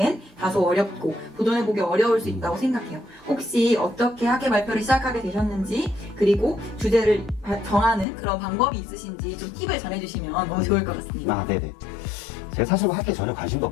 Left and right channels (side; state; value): right; drops out; at 8.1 s